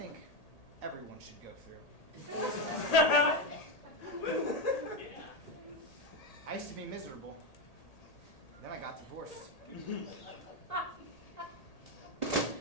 everyone should go through. I used to be miserable. Then I got divorced.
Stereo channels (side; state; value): right; late; 1.8 ms